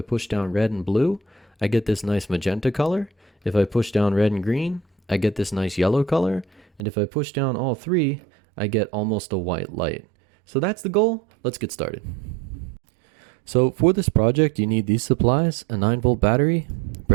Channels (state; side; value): drops out; left; at 6.9 s